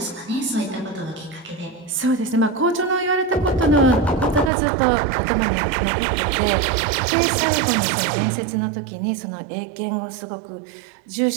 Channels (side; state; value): left; drops out; at 4.5 s